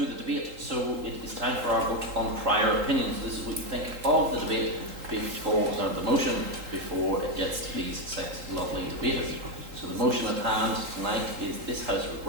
the debate. So it is time for our vote on prior opinions. This is what you think of the debate before, the motion before it gets to these 6 lovely debaters. So the motion at hand tonight is this House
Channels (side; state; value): left; late; 3.8 ms